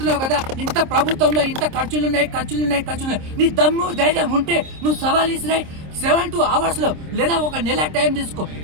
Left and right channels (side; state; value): left; late; 26 ms